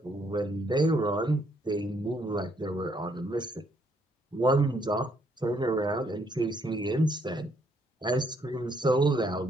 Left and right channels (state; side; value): normal; both; correlation 0.70